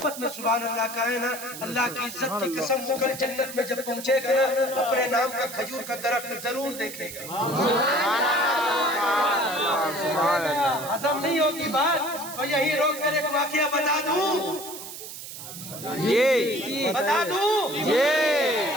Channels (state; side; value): noise; right; hiss, 11 dB below the sound